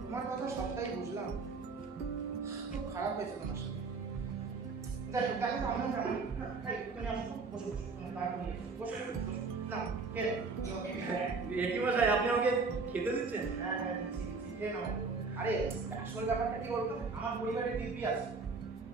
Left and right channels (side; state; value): left; quieter; 4.4 dB